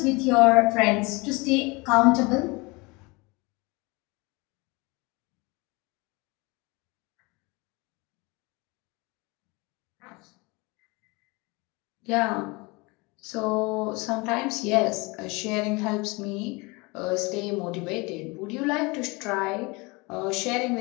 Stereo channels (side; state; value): right; quieter; 25.9 dB